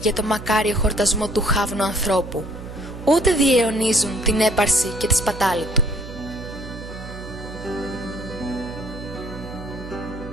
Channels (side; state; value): right; noise; hum, 12 dB below the sound